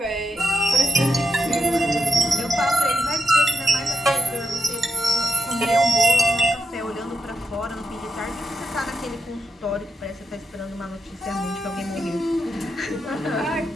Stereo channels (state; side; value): normal; both; correlation 0.83